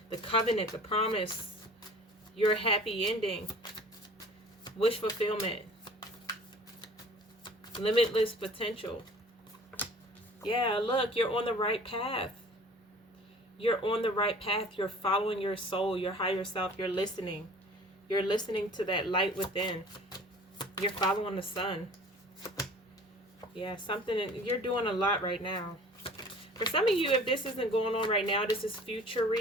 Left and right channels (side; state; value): both; normal; correlation 0.46